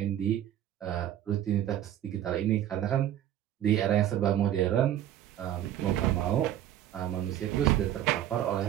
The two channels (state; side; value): quieter; left; 11.7 dB